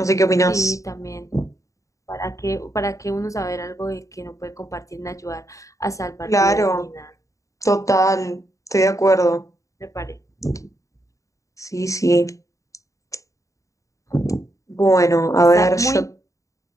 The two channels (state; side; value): late; right; 0.16 ms